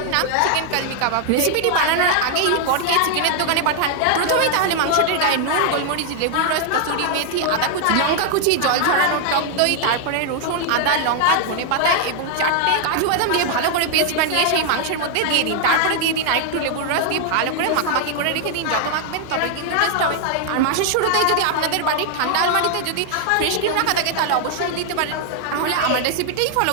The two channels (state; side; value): different; both; correlation 0.00